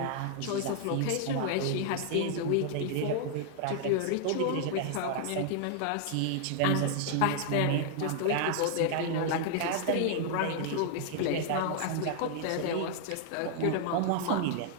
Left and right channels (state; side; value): different; both; correlation 0.00